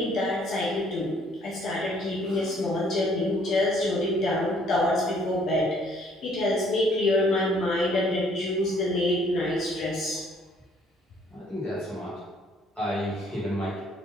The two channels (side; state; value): both; normal; correlation 0.62